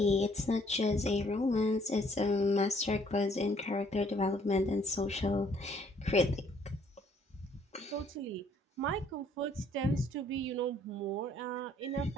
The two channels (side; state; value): both; normal; correlation 0.63